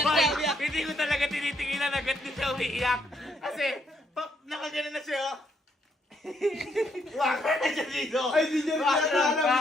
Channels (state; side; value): normal; both; correlation 0.73